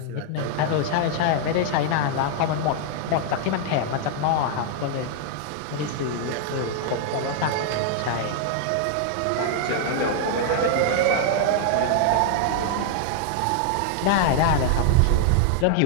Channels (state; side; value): different; both; correlation 0.00